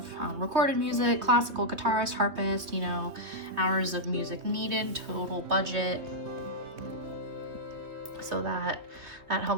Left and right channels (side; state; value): left; late; 2.9 ms